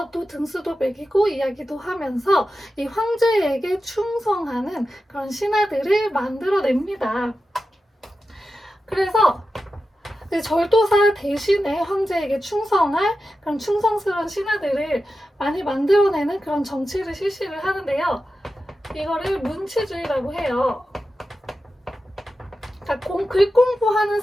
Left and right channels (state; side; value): normal; both; correlation 0.92